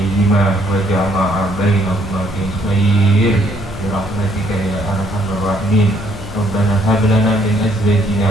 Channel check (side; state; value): left; noise; hum, 13 dB below the sound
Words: وجمع بينهما في خير برحمتك يا أرحم الراحمين. ربنا هب لنا من